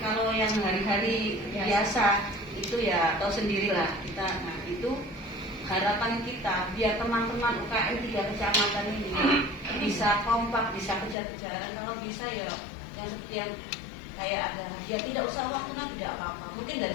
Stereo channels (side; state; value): right; drops out; at 11.2 s